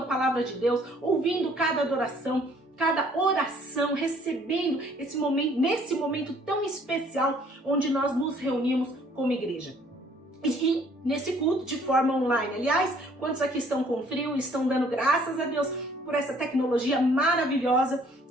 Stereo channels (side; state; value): both; normal; correlation 0.59